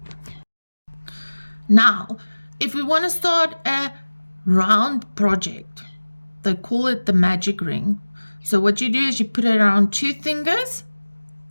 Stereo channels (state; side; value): inverted; both; correlation -1.00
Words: Now, if we want to start a round project, they call it the magic ring. So what you do is you put it around 2 fingers